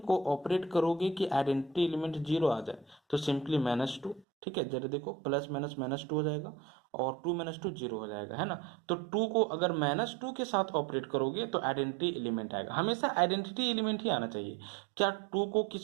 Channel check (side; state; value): left; drops out; at 4.2 s